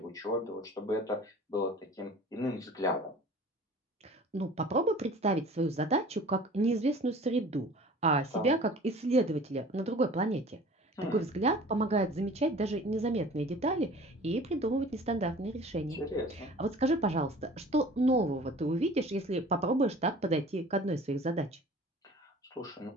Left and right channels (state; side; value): normal; both; correlation 0.45